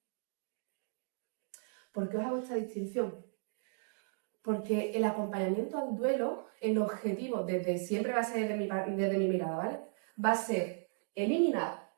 ¿Por qué os hago esta distinción? Porque el acompañamiento al duelo, el objetivo, desde siempre va a ser desde mi mirada, ¿vale? Va a ser eliminar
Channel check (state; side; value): silent; left; 54 dB below the other